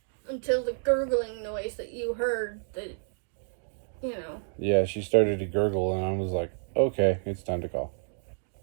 until the gurgling noise that you heard that, you know. Yeah, she started to gurgle and I was like, okay, it's time to call.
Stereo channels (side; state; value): left; silent; digital silence